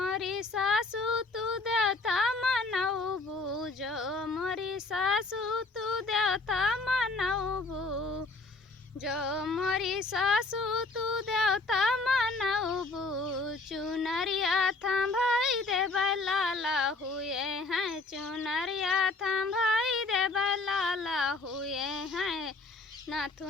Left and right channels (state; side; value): quieter; right; 3.5 dB